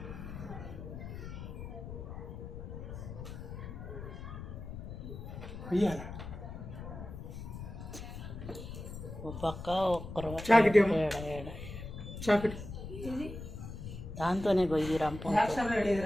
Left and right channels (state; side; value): noise; left; rumble, 9 dB below the sound